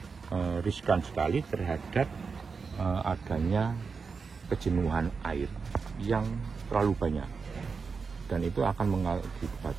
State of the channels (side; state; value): left; quieter; 5.1 dB